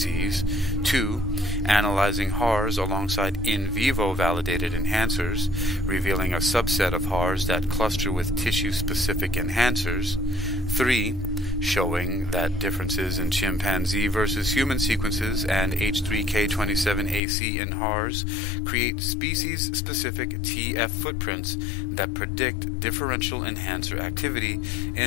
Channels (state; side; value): drops out; right; at 17.2 s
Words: 2. Analyzing HARs alongside in vivo validated enhancers, revealing a subset of HARs that cluster with tissue-specific enhancers, 3. Showing that differences in chimpanzee versus human sequences and H3K27AC in HARs create species-specific TF footprints that predict differential enhancer activity